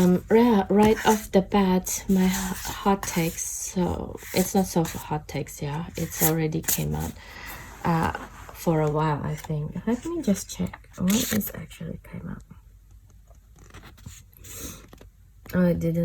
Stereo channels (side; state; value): both; identical; correlation 1.00